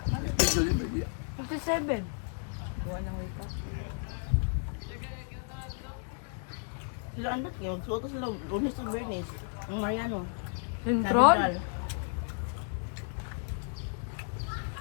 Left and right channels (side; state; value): right; silent; 56 dB below the other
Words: Schedule yun, baby. 57. Buwan ng wika. Sila andat kayo. Magsuot sila. Lunes to Bernice. Ang Mariano. Control? Nadal.